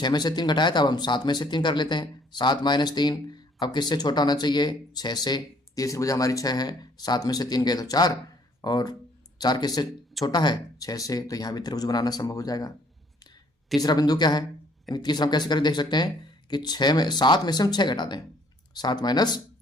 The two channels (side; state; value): both; normal; correlation 0.62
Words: में से 3 घटाया था, अब हम 7 में से 3 कर लेते हैं। 7 माइनस 3, अब किससे छोटा होना चाहिए, 6 से। तीसरी भुजा हमारी 6 है, 7 में से 3 गए तो 4, और 4 किससे छोटा है, 6 से, तो यहाँ भी त्रिभुज बनाना संभव हो जाएगा। तीसरा बिंदु क्या है, यानी तीसरा हम कैसे करके देख सकते हैं कि 7 में से हम 6 घटा दें, 7 माइनस